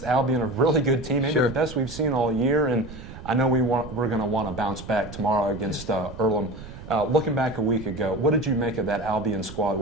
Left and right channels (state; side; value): noise; right; rumble, 13 dB below the sound